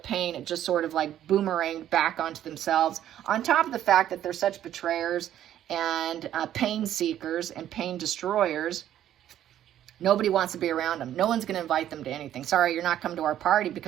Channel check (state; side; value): quieter; left; 11.4 dB